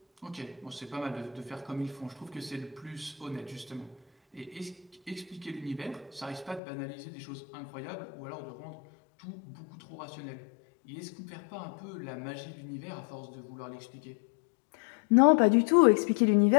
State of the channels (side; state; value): right; drops out; at 6.6 s